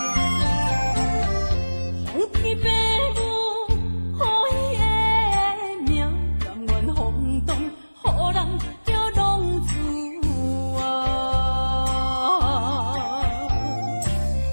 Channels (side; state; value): both; inverted; correlation -1.00